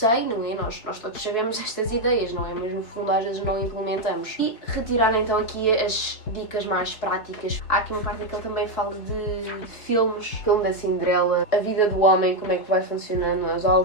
não é? Nós todos sabemos estas ideias, não é? Mas no fundo às vezes não implementamos. E retirar então aqui as dicas mais práticas. Há aqui uma parte em que ele também fala de filmes, filme da Cinderela, a vida do homem, como é que vai funcionando, os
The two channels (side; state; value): right; late; 4.6 ms